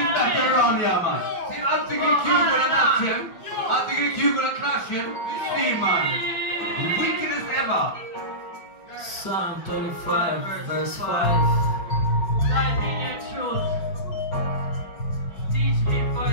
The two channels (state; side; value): late; right; 5.4 ms